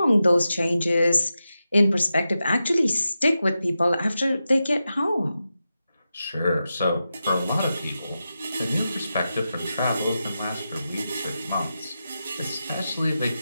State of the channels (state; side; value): inverted; both; correlation -0.90